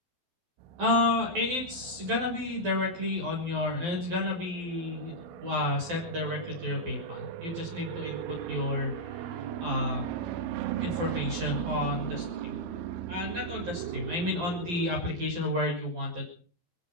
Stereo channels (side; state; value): left; late; 12 ms